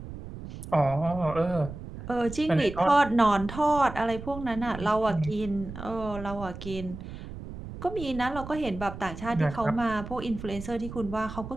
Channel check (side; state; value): right; noise; rumble, 11 dB below the sound